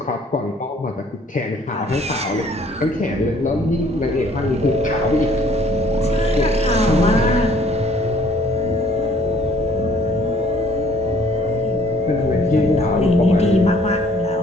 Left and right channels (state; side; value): normal; both; correlation 0.59